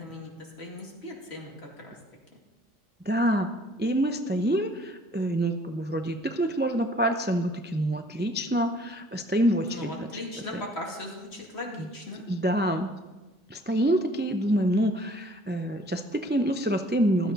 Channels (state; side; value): normal; both; correlation 0.56